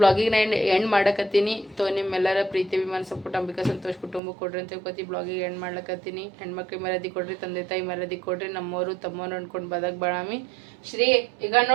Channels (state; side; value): drops out; left; at 4.2 s